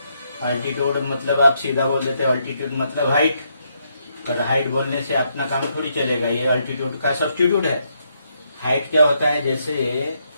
अल्टीट्यूड मतलब आप सीधा बोल देते हैं अल्टीट्यूड मतलब हाइट, पर हाइट बोलने से अपना काम थोड़ी चलेगा. ये अल्टीट्यूड का सब्स्टिट्यूट है. हाइट क्या होता है? जैसे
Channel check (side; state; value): both; inverted; correlation -0.77